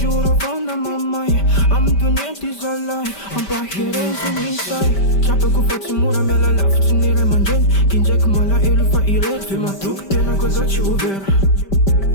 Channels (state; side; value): late; right; 5.1 ms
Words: fona mamai Am dunyenti zalai Am pahiren sumisai Chapa ku fati mura mela laf Chinire manjen Kinjek mala ilu fa irer Fima tuk tena koza chi uver